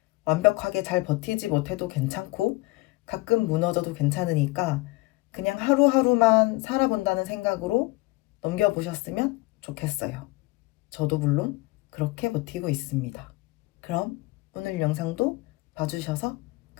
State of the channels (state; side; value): quieter; right; 22.2 dB